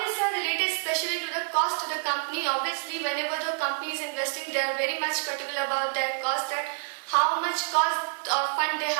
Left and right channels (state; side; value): silent; left; digital silence